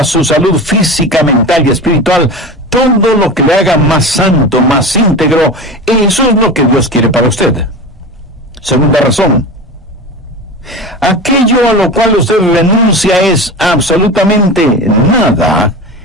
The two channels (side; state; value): both; normal; correlation 0.29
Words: su salud física, mental y espiritual, todo lo que le haga más santo, más íntegro, eso es lo que Dios quiere para usted. Segunda razón, aquello a lo cual usted renuncia es absolutamente nada